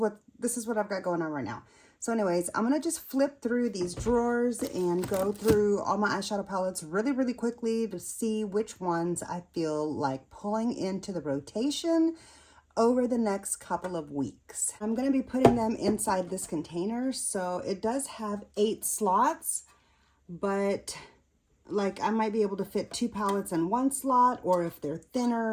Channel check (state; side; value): identical; both; correlation 1.00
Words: I've got going on right now. So anyways, I'm gonna just flip through these drawers and go through all my eyeshadow palettes really quickly to see which ones I feel like pulling into the rotation over the next couple of weeks. I'm gonna be putting them inside this container. So it does have 8 slots, but like I might be able to fit 2 palettes in one slot, or if they're